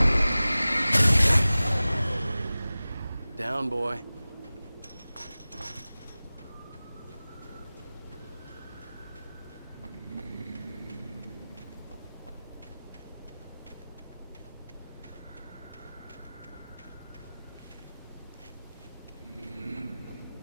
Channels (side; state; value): both; inverted; correlation -0.98